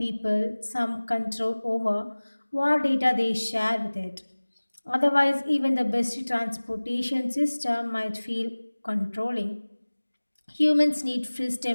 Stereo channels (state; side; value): inverted; both; correlation -1.00